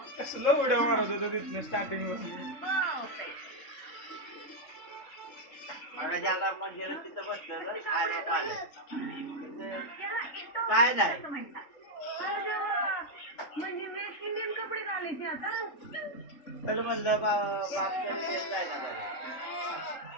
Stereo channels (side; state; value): right; late; 3.6 ms